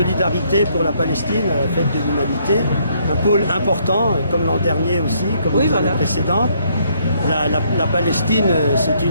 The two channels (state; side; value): inverted; both; correlation -0.69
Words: pour la Palestine à la fête de l'humanité, un pôle important, comme l'an dernier aussi, comme les années précédentes. La Palestine, c'est